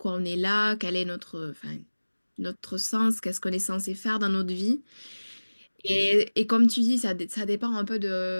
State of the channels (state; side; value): inverted; both; correlation -1.00